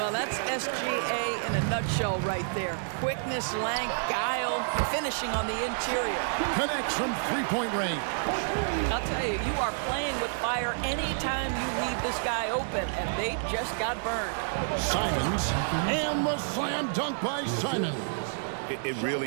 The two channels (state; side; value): silent; left; digital silence